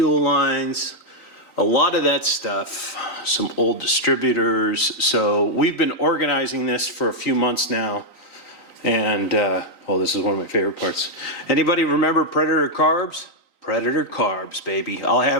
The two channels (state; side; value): late; right; 3.9 ms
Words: lines. A lot of that stuff. Some old distributors. So we've been organizing this for a few months now. And, oh, this is one of my favorite parts. Anybody remember Predator carbs? Predator carbs, baby. I'll have